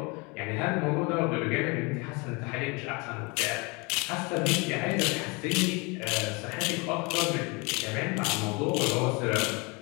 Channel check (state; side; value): quieter; right; 28.4 dB